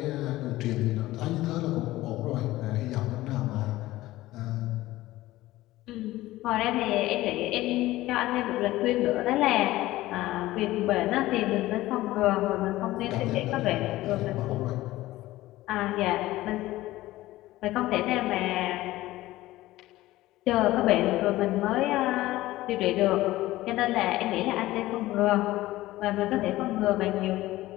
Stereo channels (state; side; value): quieter; right; 16.9 dB